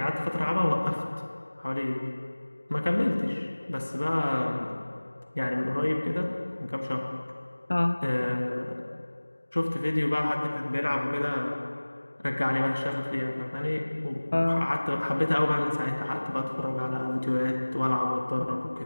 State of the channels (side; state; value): both; inverted; correlation -1.00